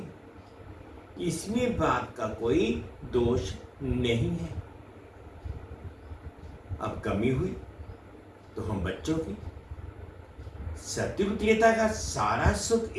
इसमें बाप का कोई दोष नहीं है। अब कमी हुई तो हम बच्चों की। सतयुग त्रेता का सारा सुख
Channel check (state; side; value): identical; both; correlation 1.00